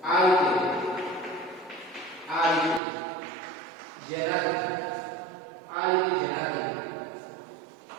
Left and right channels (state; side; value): drops out; left; at 2.8 s